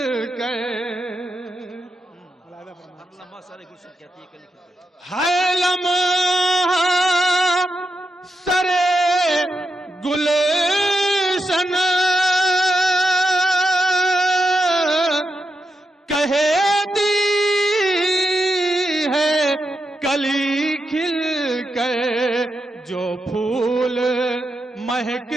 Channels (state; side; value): normal; both; correlation 0.87